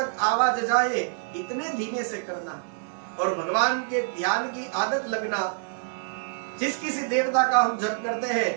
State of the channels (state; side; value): silent; left; 61 dB below the other